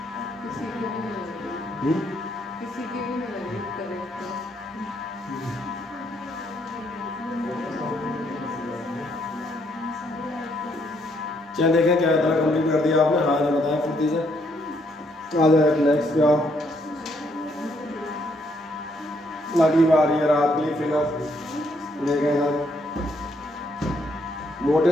किसी की भी नहीं करेक्ट। चलिए देखें क्या इतना कंप्लीट कर दिया आपने, हाँ ना बताएं फुर्ती से। आ जाए नेक्स्ट पे आओ, अगली बार ये रात की फिगर देखें सर।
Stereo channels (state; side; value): normal; both; correlation 0.72